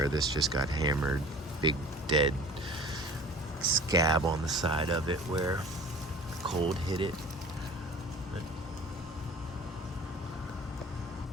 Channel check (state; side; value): normal; both; correlation 0.44